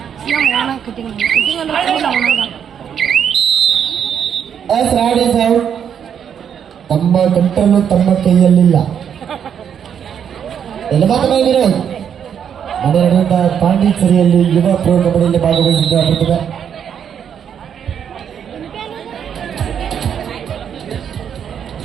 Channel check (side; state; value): left; quieter; 8.3 dB